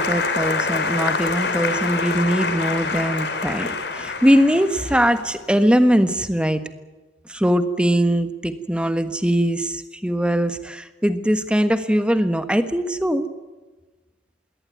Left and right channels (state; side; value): normal; both; correlation 0.80